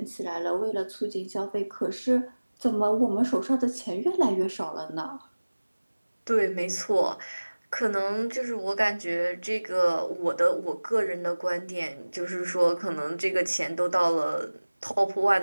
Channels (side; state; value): both; inverted; correlation -1.00